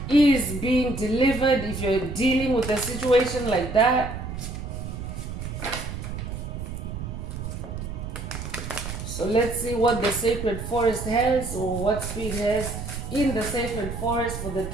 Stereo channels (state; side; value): noise; right; rumble, 7 dB below the sound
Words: is being delivered if you're dealing with a situation like that. So let's see what the Sacred Forest has, or what Spirit has in the Sacred Forest for the